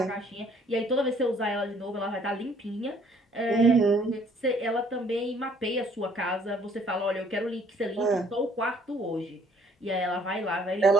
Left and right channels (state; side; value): normal; both; correlation 0.61